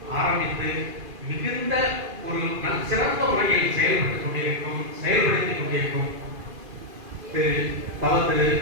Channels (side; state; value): left; late; 2.5 ms